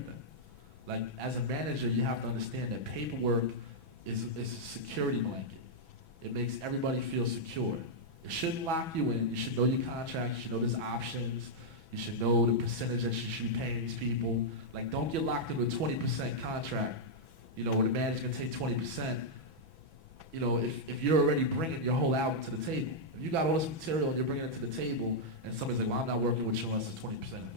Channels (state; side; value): late; left; 6.1 ms